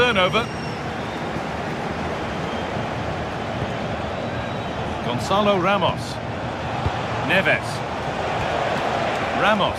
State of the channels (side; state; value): both; identical; correlation 1.00